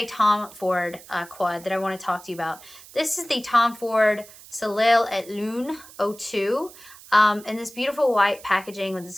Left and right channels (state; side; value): noise; right; hiss, 20 dB below the sound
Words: Tom Ford quad that I want to talk to you about. This is the Tom Ford Soleil et Lune 02. And this beautiful white packaging with